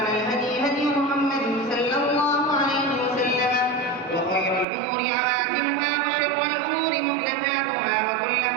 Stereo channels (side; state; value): left; drops out; at 4.7 s